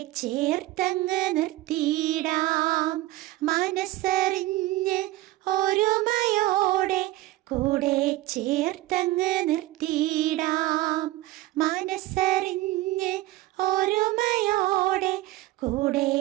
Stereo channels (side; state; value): left; quieter; 17.4 dB